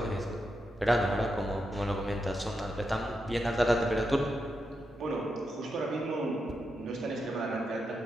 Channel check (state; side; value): normal; both; correlation 0.85